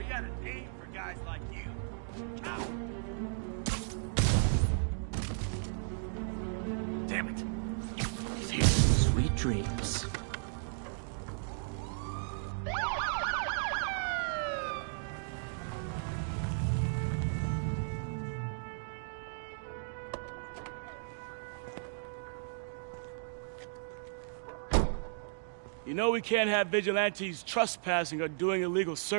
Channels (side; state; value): left; silent; digital silence